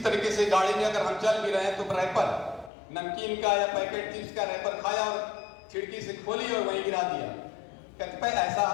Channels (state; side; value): drops out; right; at 2.7 s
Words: तरीके से गाड़ी में अगर हम चल भी रहे हैं तो रैपर नमकीन का या पैकेट चिप्स का रैपर खाया और खिड़की से खोली और वहीं गिरा दिया। कतिपय ऐसा